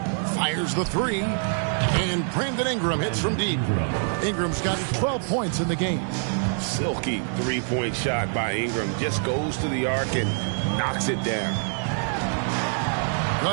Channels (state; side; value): silent; left; 61 dB below the other